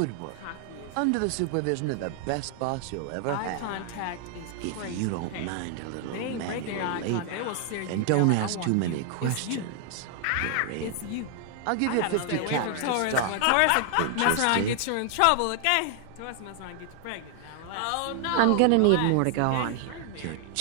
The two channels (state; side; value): different; both; correlation 0.00